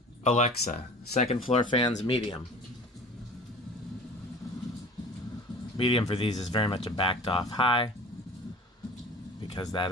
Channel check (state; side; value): normal; both; correlation 0.41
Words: Alexa, second floor fans medium. Medium for these is very much a backed off high because that